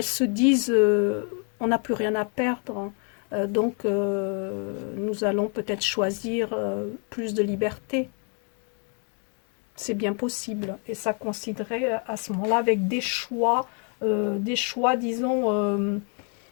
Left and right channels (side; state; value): right; quieter; 39.9 dB